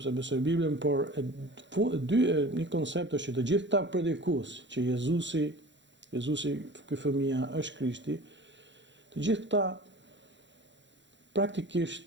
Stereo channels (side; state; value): left; late; 0.53 ms